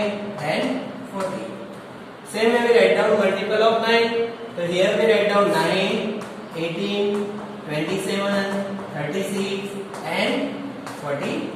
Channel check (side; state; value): both; identical; correlation 1.00